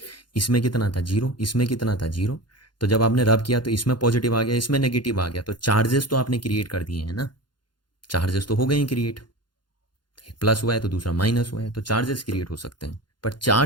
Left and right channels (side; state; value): right; late; 0.71 ms